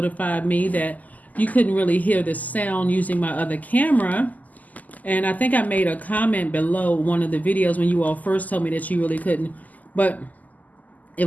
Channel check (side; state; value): right; late; 0.079 ms